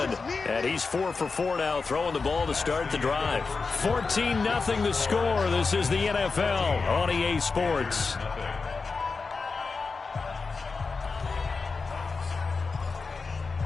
And he's 4 for 4 now, throwing the ball to start the drive. 14-0 the score. This is the NFL on EA Sports.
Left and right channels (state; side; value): quieter; right; 4.4 dB